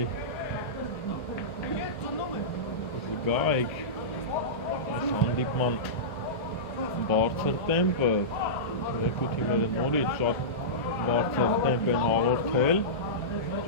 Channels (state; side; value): normal; both; correlation -0.17